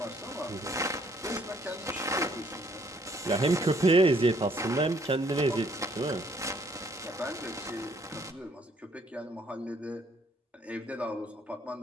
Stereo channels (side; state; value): both; normal; correlation 0.65